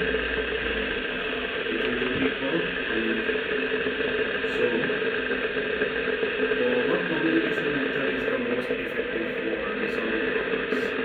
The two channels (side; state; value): both; identical; correlation 1.00